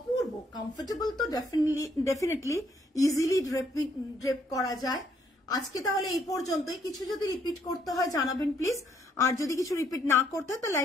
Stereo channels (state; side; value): normal; both; correlation 0.70